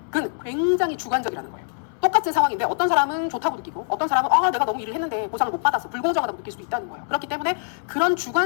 굉장히 주관적이라는 거예요. 똑같은 상황인데 어떤 사람은 좋다고 느끼고 어떤 사람은 내가 너무 일을 했는데 보상을 못 받았어, 불공정하다고 느낄 수도 있다는 거예요. 그렇기 때문에 그런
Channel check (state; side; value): silent; right; 63 dB below the other